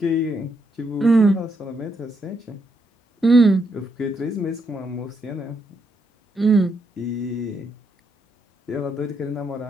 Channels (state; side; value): normal; both; correlation 0.78